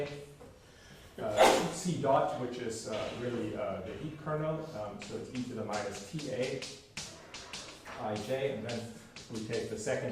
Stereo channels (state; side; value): identical; both; correlation 1.00